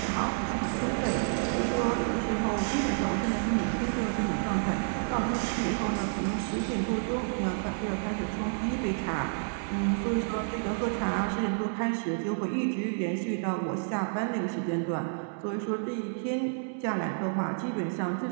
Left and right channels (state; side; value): silent; left; 58 dB below the other